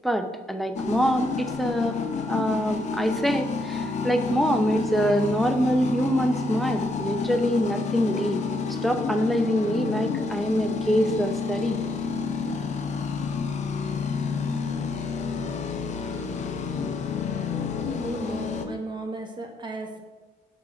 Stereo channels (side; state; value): both; normal; correlation 0.77